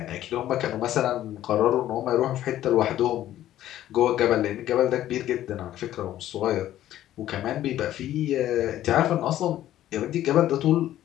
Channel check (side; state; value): right; quieter; 12.9 dB